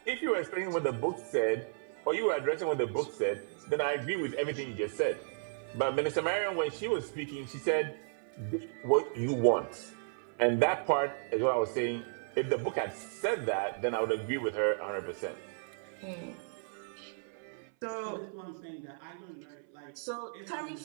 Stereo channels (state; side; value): silent; left; 55 dB below the other